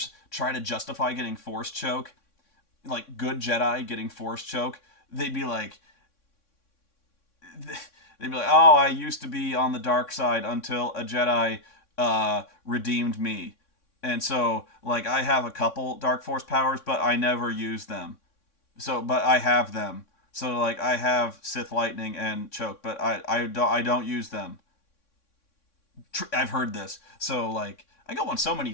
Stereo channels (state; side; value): late; right; 3.6 ms